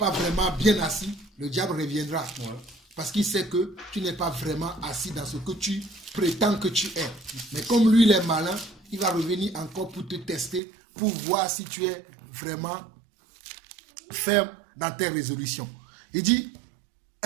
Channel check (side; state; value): left; drops out; at 10.6 s